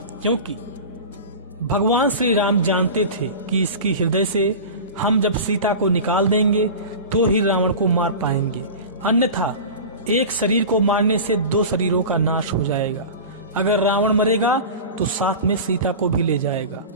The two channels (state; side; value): inverted; both; correlation -0.32